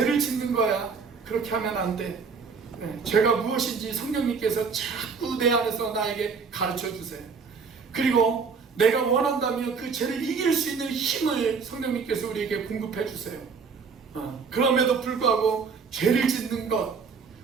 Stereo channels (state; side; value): quieter; left; 5.4 dB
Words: 짓는 거야. 그렇게 하면 안 돼. 죄가 무엇인지 성령님께서 자꾸 내 안에서 나에게 가르쳐 주세요. 그리고 내가 원한다면 그 죄를 이길 수 있는 힘을 성령님께서 우리에게 공급해 주세요. 그럼에도 불구하고 죄를 짓는 것,